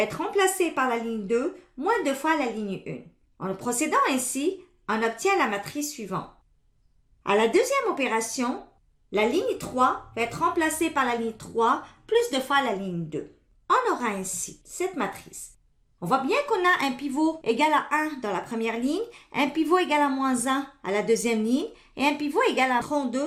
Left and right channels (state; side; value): identical; both; correlation 1.00